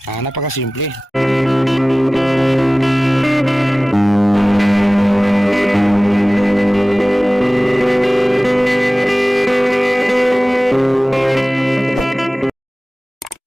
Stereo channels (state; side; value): normal; both; correlation 0.98